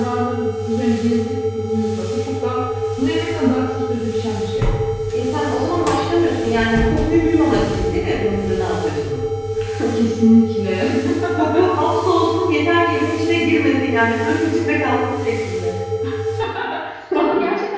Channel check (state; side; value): identical; both; correlation 1.00